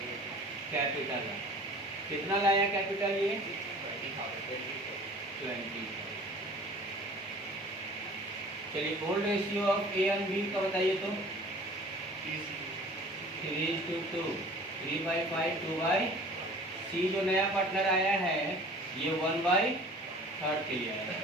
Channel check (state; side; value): normal; both; correlation 0.46